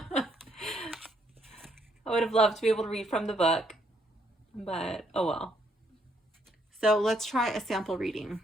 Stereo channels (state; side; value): normal; both; correlation 0.72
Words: would have loved to be able to read from the book, but oh well. So let's try a sample reading.